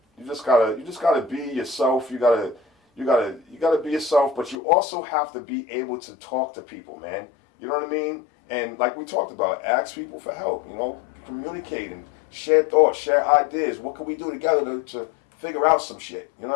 you just gotta be yourself. You gotta be yourself, but you also have to be able to talk to people, man. You know what I mean? And like we talked about, ask people for help. You know, communicate and share thoughts, share ideas. What can we do together to figure out some shit? You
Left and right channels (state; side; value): drops out; right; at 4.6 s